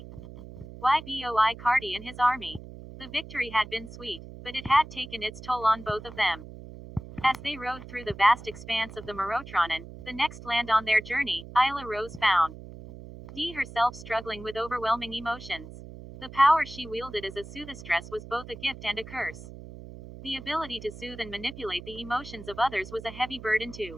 Cardi and his army. The victory had been sweet, but it had taken its toll on both of them. As they rode through the vast expanse of the Morotranon, the next land on their journey, Isla Rose found Dee herself struggling with overwhelming emotions. The power she wielded as a soothistress was both a gift and a curse. The ability to soothe and manipulate the emotions of others was a heavy burden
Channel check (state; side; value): noise; right; hum, 14 dB below the sound